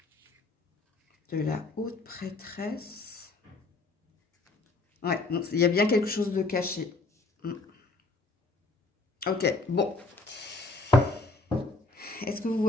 De la haute prêtresse. Ouais, donc il y a bien quelque chose de caché. Ok, bon. Est-ce que vous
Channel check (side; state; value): right; quieter; 3.5 dB